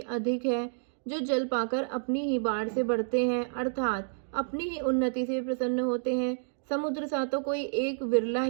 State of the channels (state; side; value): silent; left; digital silence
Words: है, जो जल पाकर अपनी ही बाढ़ से बढ़ते हैं, अर्थात अपनी ही उन्नति से प्रसन्न होते हैं। समुद्र सा तो कोई एक विरला